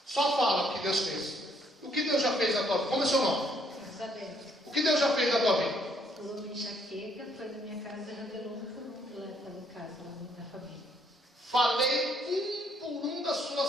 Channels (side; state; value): both; normal; correlation 0.68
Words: Só fala o que Deus fez. O que Deus já fez na tua vida? Como é seu nome? Isabel. O que Deus já fez na tua vida? Curou minha enxaqueca, foi na minha casa e revelou um por um lá em casa, lá da família. Falei um por um da